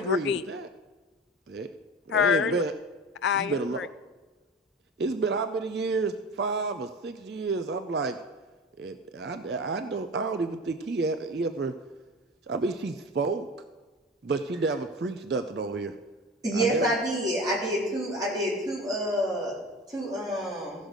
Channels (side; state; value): both; normal; correlation 0.33